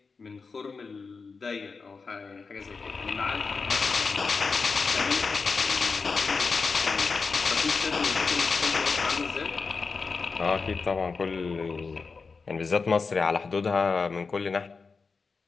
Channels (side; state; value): right; quieter; 4.7 dB